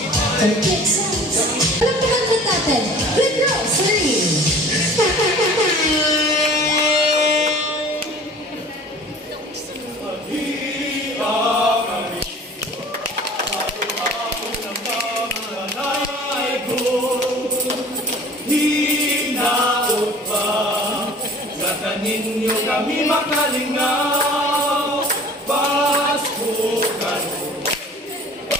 Complete sounds. Alam mo kanta natin. Red Rose, ready? Ninyo kami makalingaw, pasukan.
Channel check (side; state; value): both; normal; correlation 0.46